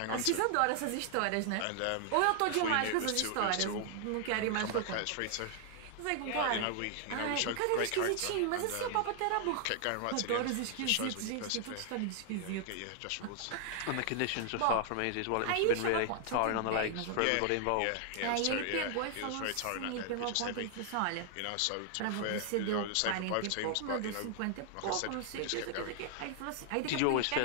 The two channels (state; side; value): different; both; correlation 0.00